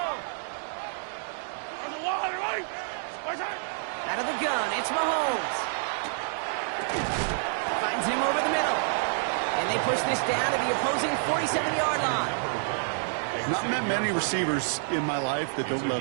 Out of the gun, it's Mahomes. Finds him over the middle. And they push this down to the opposing 47-yard line. Not met many receivers in my life that don't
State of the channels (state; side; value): silent; left; digital silence